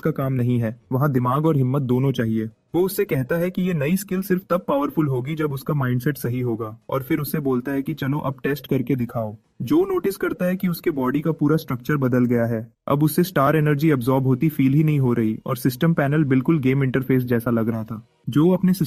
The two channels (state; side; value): identical; both; correlation 1.00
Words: का काम नहीं है, वहाँ दिमाग और हिम्मत दोनों चाहिए। वो उससे कहता है कि ये नई स्किल सिर्फ तब पावरफुल होगी जब उसका माइंडसेट सही होगा, और फिर उससे बोलता है कि चलो अब टेस्ट करके दिखाओ। जो नोटिस करता है कि उसके बॉडी का पूरा स्ट्रक्चर बदल गया है। अब उससे स्टार एनर्जी अब्सॉर्ब होती फील ही नहीं हो रही और सिस्टम पैनल बिल्कुल गेम इंटरफेस जैसा लग रहा था। जो अपने